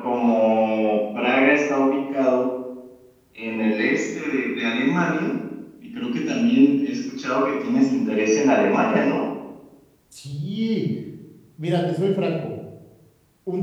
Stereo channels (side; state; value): both; identical; correlation 1.00